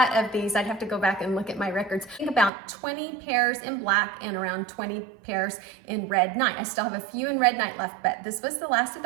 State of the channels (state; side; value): drops out; left; at 2.5 s